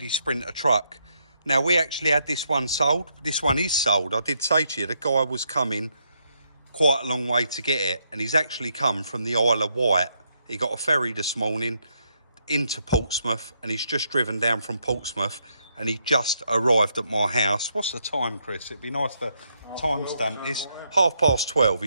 Sprinter truck. Now, we actually had this one sold. This one is sold. I did say to you, the guy was coming quite a long way to get it, and he's actually come from the Isle of Wight. He got a ferry this morning into Portsmouth, and he's just driven down from Portsmouth, and he just arrived at my house. What's the time, Chris? It'd be nice to timestamp this. 12:30.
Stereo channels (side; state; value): both; inverted; correlation -0.77